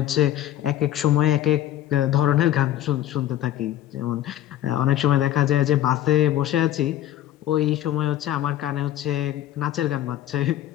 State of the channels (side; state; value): right; quieter; 12.5 dB